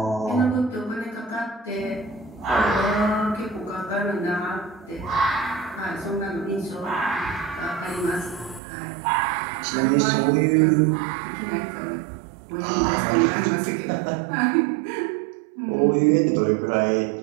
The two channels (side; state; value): left; drops out; at 8.6 s